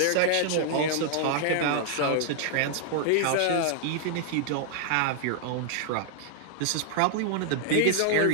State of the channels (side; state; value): both; different; correlation 0.00